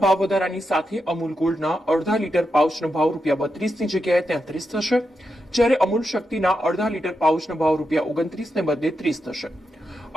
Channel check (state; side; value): normal; both; correlation 0.86